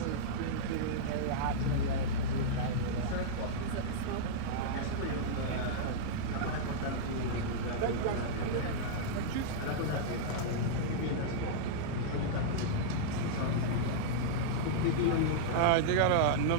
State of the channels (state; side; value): different; both; correlation -0.03